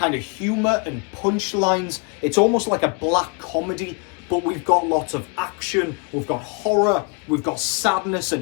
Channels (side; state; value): right; quieter; 33.4 dB